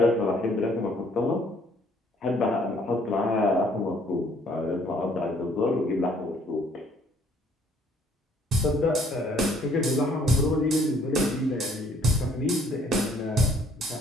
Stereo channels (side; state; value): both; normal; correlation 0.62